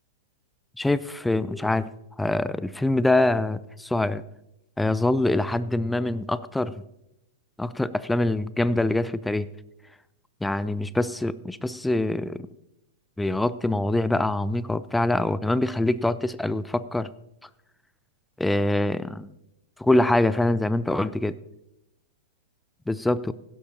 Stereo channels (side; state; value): both; normal; correlation 0.93